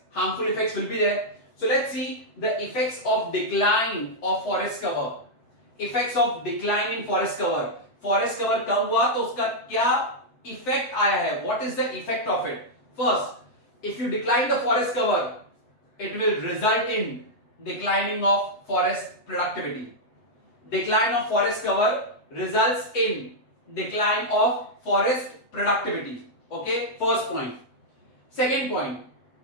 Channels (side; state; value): right; late; 7.9 ms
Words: harmful effects will be there. So let's see the effects of decline of forest cover. Effects of decline in forest cover. Forest cover कम हुआ तो उसका क्या effect आया है? What is the effect of it? First, if you decline the forest cover, it will result in declining of forest productivity. Decline of forest cover results in decline of forest productivity. Okay, first point. Second point,